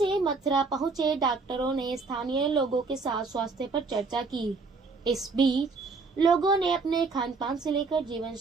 मथुरा पहुंचे डॉक्टरों ने स्थानीय लोगों के साथ स्वास्थ्य पर चर्चा की। इस बीच लोगों ने अपने खान पान से लेकर जीवन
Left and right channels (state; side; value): quieter; left; 4.2 dB